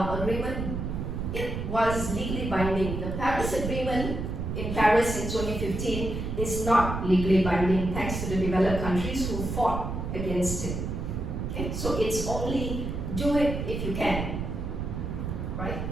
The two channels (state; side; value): noise; right; rumble, 4 dB below the sound